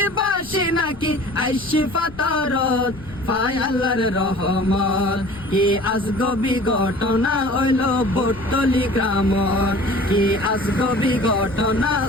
বাসি নাকি আইসি ফাতরত। পায় আল্লাহর রহমত, কি আজগবি ঘটনা হইল বৈতলি গ্রামত, কি আজগবি ঘটনা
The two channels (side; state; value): left; noise; rumble, 19 dB below the sound